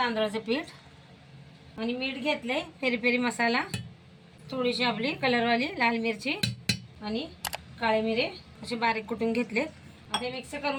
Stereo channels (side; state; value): both; identical; correlation 1.00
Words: पीठ आणि मीठ घेतलंय, पेरी पेरी मसाला, थोडीशी आपली कलरवाली लाल मिरची आणि काळे मिरे असे बारीक कुटून घेतले। आता मिक्स